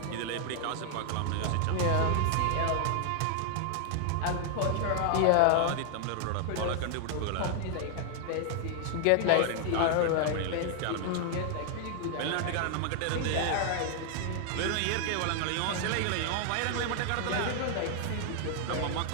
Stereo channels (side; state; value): both; different; correlation 0.00